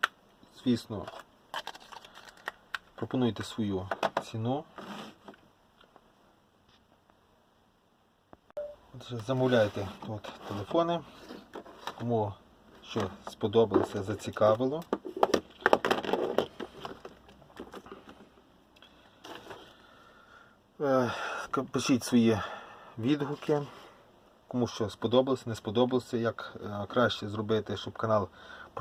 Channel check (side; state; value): both; identical; correlation 1.00